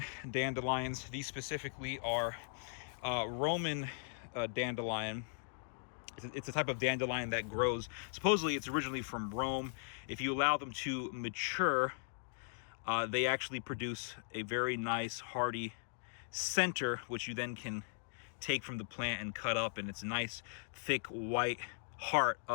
dandelions. These specifically are Roman dandelion. It's a type of dandelion that grows. Supposedly, it's originally from Rome. If you allow them to mature, they actually produce a very nice, hearty center, which you then can take from the plant and cut up, and it's a nice, thick, white heart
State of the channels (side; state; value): right; silent; digital silence